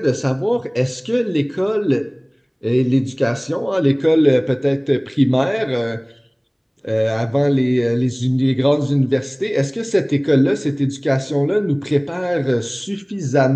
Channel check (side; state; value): both; identical; correlation 1.00